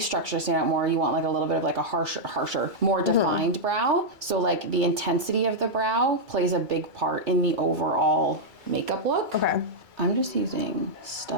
structure to stand out more, you want like a little bit of like a harsher, more defined brow. So like the intensity of the brow plays a big part in the overall makeup look. Okay. I'm just using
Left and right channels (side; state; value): left; late; 2.3 ms